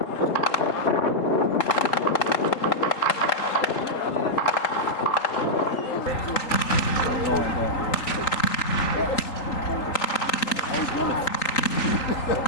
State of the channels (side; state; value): right; late; 3.8 ms